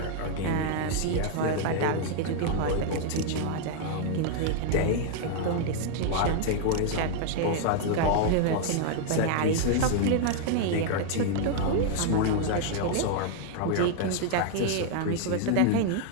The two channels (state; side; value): different; both; correlation 0.00